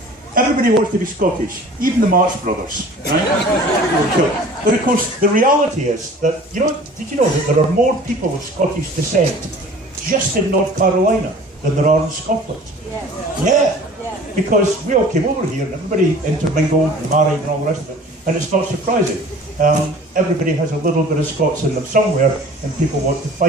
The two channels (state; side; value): normal; both; correlation 0.46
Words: everybody wants to be Scottish, even the March brothers. Right? But of course, the reality is that, did you know that there are more people of Scottish descent just in North Carolina than there are in Scotland? Yeah. Because we all came over here and everybody intermingled and married and all the rest of it. And it's not surprising. Everybody has a little bit of Scots in them somewhere and people want to